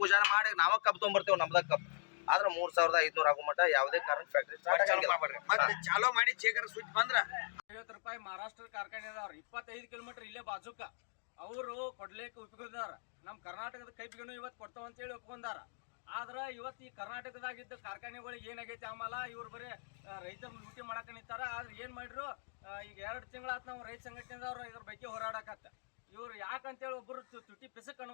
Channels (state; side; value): silent; right; digital silence